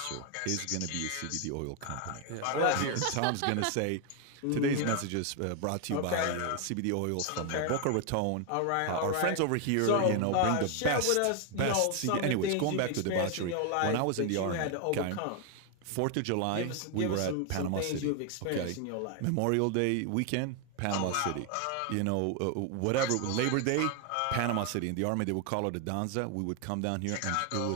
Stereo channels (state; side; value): different; both; correlation 0.00